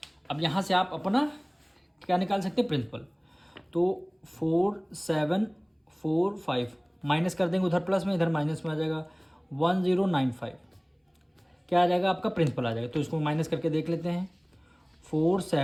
अब यहाँ से आप अपना क्या निकाल सकते हैं, प्रिंसिपल। तो 4745 माइनस कर देंगे, उधर प्लस में इधर माइनस में आ जाएगा, 1095 क्या आ जाएगा, आपका प्रिंसिपल आ जाएगा। तो इसको माइनस करके देख लेते हैं,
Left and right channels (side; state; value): both; identical; correlation 1.00